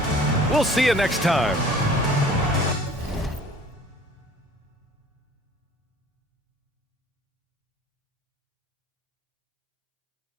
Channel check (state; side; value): normal; both; correlation 0.49